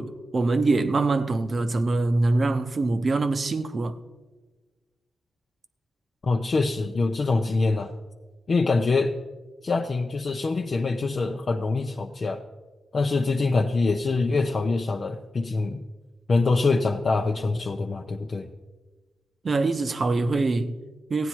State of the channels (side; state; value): both; normal; correlation 0.91